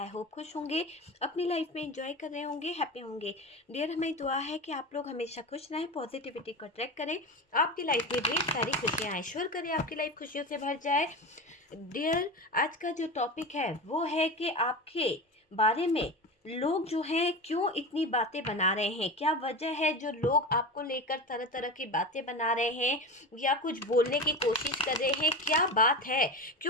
होप खुश होंगे, अपनी लाइफ में एंजॉय कर रहे होंगे, हैप्पी होंगे। डियर, हमें दुआ है कि आप लोग हमेशा खुश रहें, पॉजिटिविटी को अट्रैक्ट करें, आपकी लाइफ में ढेर सारी खुशियाँ आए, श्योर करें आपकी लाइफ खुशियों से भर जाए। डियर, आज का जो टॉपिक है वो है कि आपके बारे में लोग जो हैं क्यों इतनी बातें बना रहे हैं, क्या वजह है जो लोग आपको लेकर तरह तरह की बातें बना रहे हैं या कुछ बोलने की कोशिश कर रहे हैं। क्या बात है,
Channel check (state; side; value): normal; both; correlation 0.25